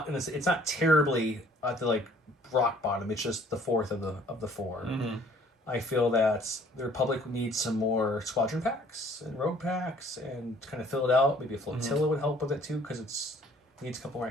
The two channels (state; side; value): normal; both; correlation 0.57